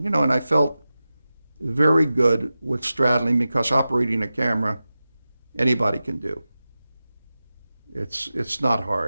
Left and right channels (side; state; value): both; inverted; correlation -0.94